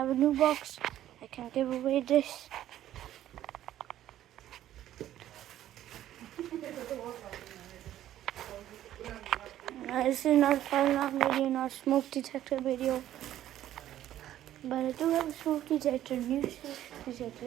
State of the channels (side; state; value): left; quieter; 12.5 dB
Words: a new box, I can give away this. This is not a fire alarm video, not a smoke detector video. But I do have a smoke detector, new smoke